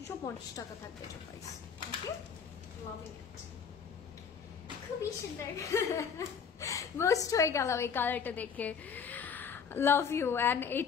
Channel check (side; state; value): right; quieter; 6.6 dB